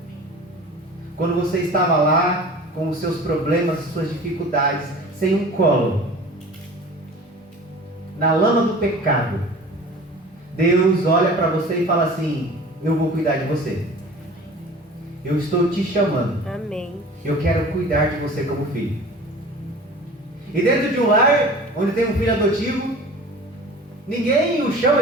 Quando você estava lá, com os seus problemas, suas dificuldades, sem um colo, na lama do pecado, Deus olha para você e fala assim: eu vou cuidar de você. Eu estou te chamando. Amém. Eu quero cuidar de você como filho. E dentro de um lar onde tem um filho adotivo, ninguém o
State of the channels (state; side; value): normal; both; correlation 0.41